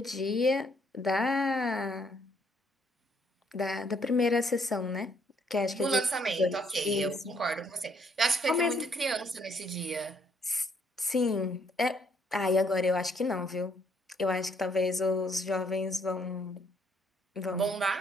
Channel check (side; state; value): both; normal; correlation 0.68